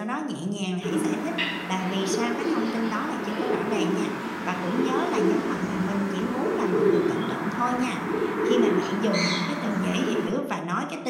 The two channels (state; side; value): identical; both; correlation 1.00